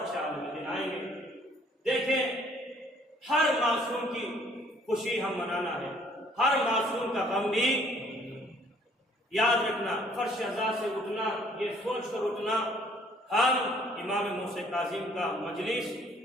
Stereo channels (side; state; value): both; normal; correlation 0.60